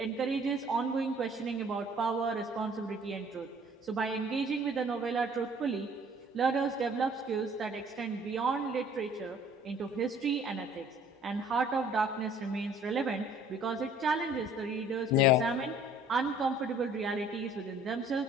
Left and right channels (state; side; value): normal; both; correlation 0.55